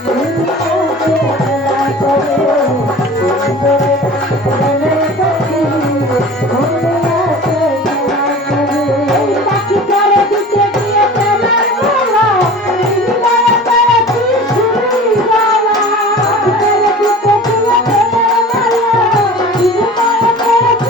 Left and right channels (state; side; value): normal; both; correlation 0.40